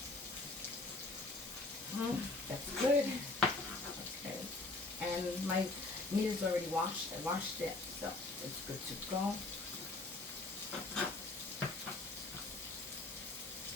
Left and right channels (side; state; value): right; quieter; 3.2 dB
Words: That's good. Okay. And my meat is already washed. I washed it, so it's good to go.